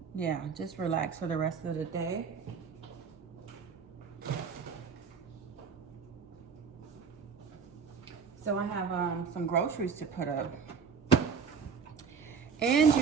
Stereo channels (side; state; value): left; quieter; 6.1 dB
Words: yeah, just relax for the rest of the day. So I have some groceries to put up. And